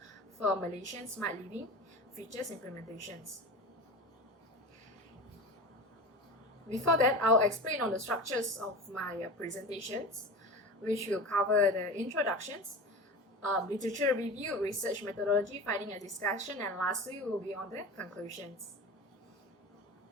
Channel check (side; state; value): both; normal; correlation 0.30